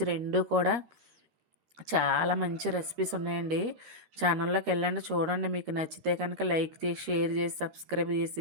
రెండు కూడా చాలా మంచి రెసిపీస్ ఉన్నాయండి. ఛానల్లోకి వెళ్ళండి, చూడండి. మీకు నచ్చితే కనుక లైక్ చేసి షేర్ చేసి సబ్స్క్రైబ్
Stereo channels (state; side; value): late; left; 13 ms